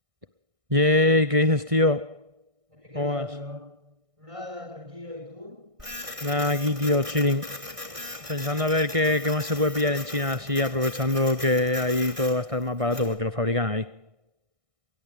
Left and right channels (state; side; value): late; left; 1.6 ms